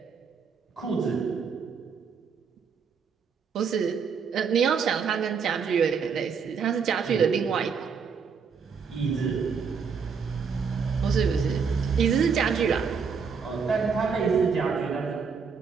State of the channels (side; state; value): left; quieter; 5.9 dB